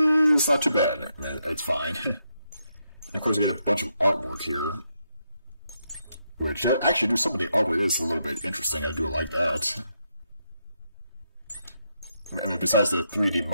not too bad. It's fine. And of course, you get a bunch of artwork here, which actually, some of the artwork is a little bit interesting. I do like that. I mean, besides the 3D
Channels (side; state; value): both; inverted; correlation -0.81